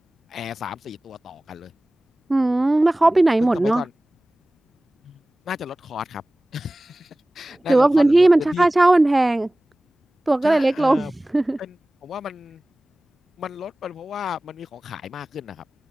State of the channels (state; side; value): normal; both; correlation 0.98